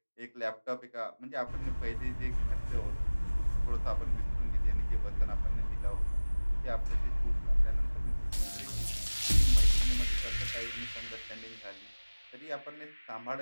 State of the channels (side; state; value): both; inverted; correlation -1.00